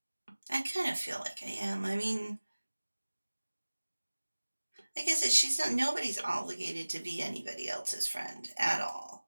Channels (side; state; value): both; inverted; correlation -1.00